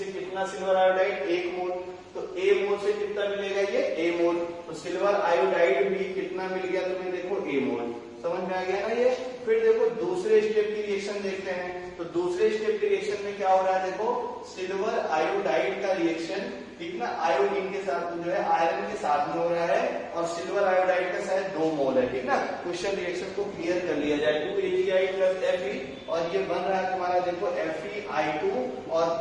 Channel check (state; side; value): identical; both; correlation 1.00